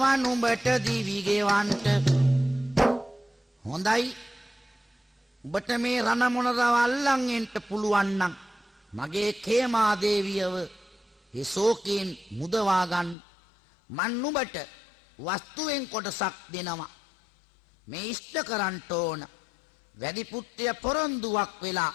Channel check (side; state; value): right; drops out; at 13.2 s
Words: නුඹට දිවි ගෙවන්ට. හොඳයි, ඔබට මේ රණ මොණරව අල්ලන් එන්න පුළුවන් නම් මගේ කේමා දේවියව ඒ ශෝකයෙන් මුදවා ගන්න. මන් නුඹට වස්තුවෙන් කොටසක් දෙනවා. මේ ඉෂ්ට කරන්න ඕන. වැදි පුත්‍රය පොරොන්දුවක් වෙලා